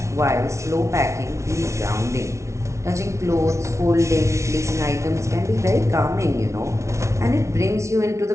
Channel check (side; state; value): left; late; 0.14 ms